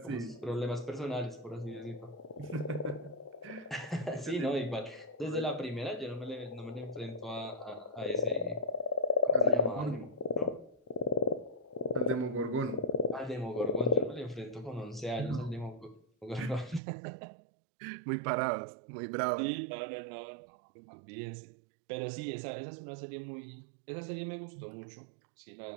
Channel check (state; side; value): drops out; left; at 16.8 s